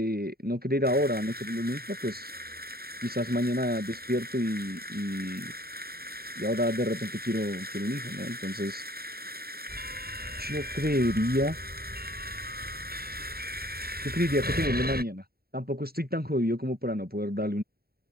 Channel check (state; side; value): late; left; 0.45 ms